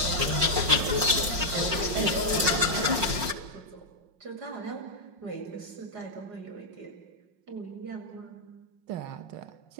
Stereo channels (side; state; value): left; late; 5.5 ms